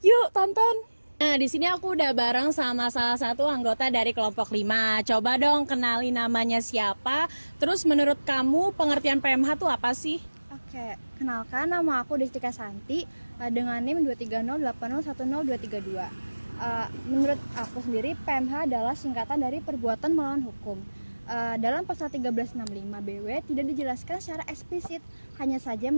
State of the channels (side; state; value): both; inverted; correlation -1.00